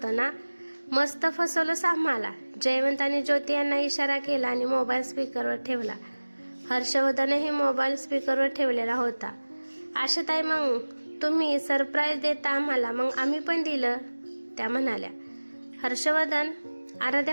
ना? मस्त फसवलंस आम्हाला. जयवंत आणि ज्योती यांना इशारा केला आणि मोबाईल स्पीकरवर ठेवला. हर्षवर्धनही मोबाईल स्पीकरवर ठेवलेला होता. आशाताई, मग तुम्ही सरप्राईज देता आम्हाला, मग आम्ही पण दिलं, त्या म्हणाल्या. हर्षवर्धन,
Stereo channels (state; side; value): inverted; both; correlation -1.00